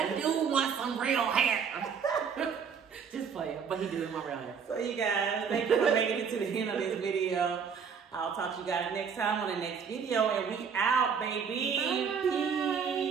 do want some real hair. Just play it, but he doing my real hair. So you guys, thank you for making it to the end of this video. I'll talk to you guys next time on the next video, and we out, baby. Bye.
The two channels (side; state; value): left; quieter; 6.6 dB